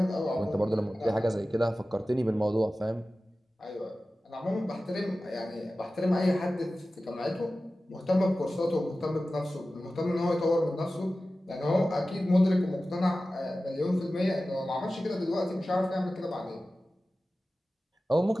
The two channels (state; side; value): normal; both; correlation 0.95